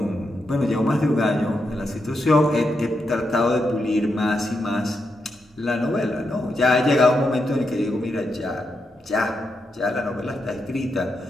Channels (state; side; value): normal; both; correlation 0.84